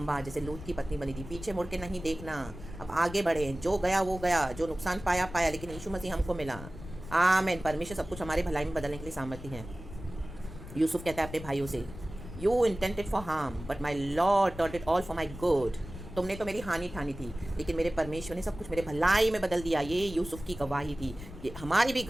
जैसे लूत की पत्नी बनी थी, पीछे मुड़ के नहीं देखना, अब आगे बढ़े। जो गया वो गया, जो नुकसान पाया पाया, लेकिन यीशु मसीह हमको मिला। आमेन। परमेश्वर सब कुछ हमारे भलाई में बदलने के लिए सामर्थ्य है। यूसुफ कहता है अपने भाइयों से, you intended for harm but my lord turned it all for my good. तुमने तो मेरी हानि ठानी थी, लेकिन मेरे परमेश्वर ने सब कुछ मेरे भलाई में बदल दिया। ये यूसुफ की गवाही थी, ये हमारी भी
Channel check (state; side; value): noise; left; rumble, 13 dB below the sound